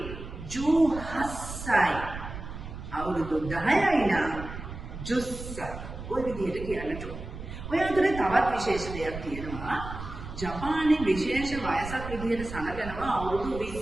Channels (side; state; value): right; noise; rumble, 10 dB below the sound